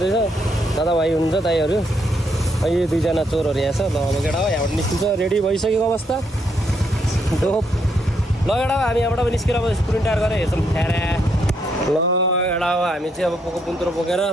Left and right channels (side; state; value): both; normal; correlation 0.75